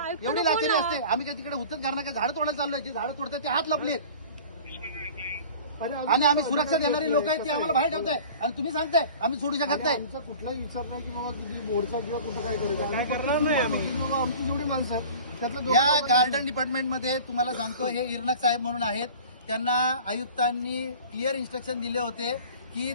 आयुक्तांना फोन लाचारी लावा. असते. आम्ही काय तिकडे हुतच करणार का? झाडं तोडायला चाललोय, जी झाडं तोडतात ते हात लपलेत, अरे आणि आम्ही सुरक्षा देणारी लोक आहेत ती आम्हाला बाहेर ठेवताय, आणि तुम्ही सांगताय आम्ही सोडू शकत नाही. आमचा कुठलाही विचार नाही की बाबा किती मोर्चा किंवा कुठं काय करायचं. काय करणार नाही आम्ही. बाबा आमची जेवढी माणसं आहेत त्यातलं दोन या गार्डन डिपार्टमेंटमध्ये तुम्हाला सांगतो, हे इरनक साहेब म्हणून आहेत, त्यांना आयुक्तांनी क्लिअर इन्स्ट्रक्शन दिले होते की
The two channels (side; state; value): both; inverted; correlation -0.42